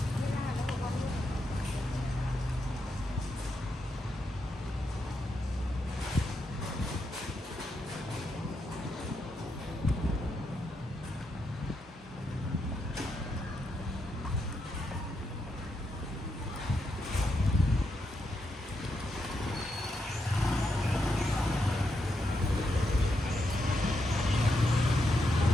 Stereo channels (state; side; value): normal; both; correlation 0.82